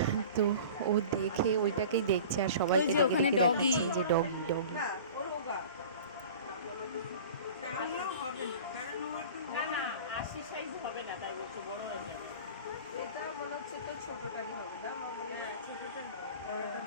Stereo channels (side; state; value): both; inverted; correlation -0.40